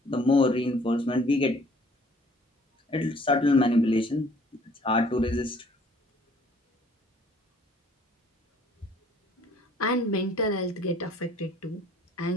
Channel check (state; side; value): normal; both; correlation 0.57